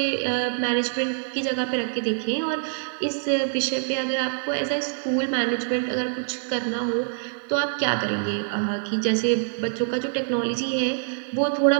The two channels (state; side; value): silent; left; digital silence